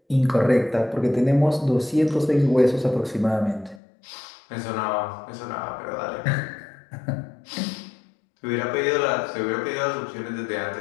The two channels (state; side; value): drops out; right; at 3.8 s